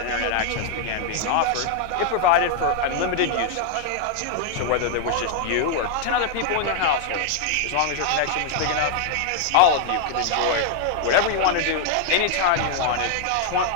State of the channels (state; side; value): different; both; correlation 0.00